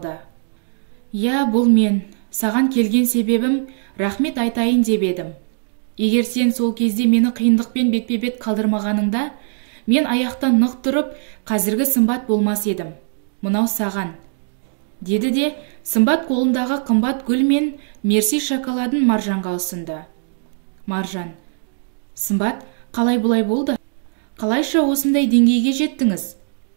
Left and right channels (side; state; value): left; silent; 64 dB below the other